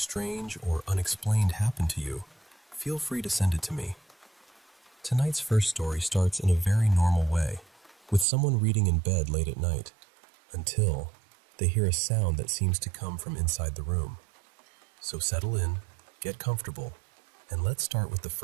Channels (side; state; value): left; drops out; at 8.2 s